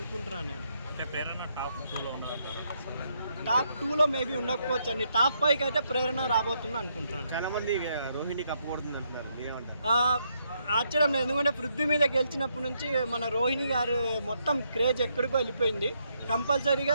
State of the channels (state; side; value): inverted; both; correlation -0.76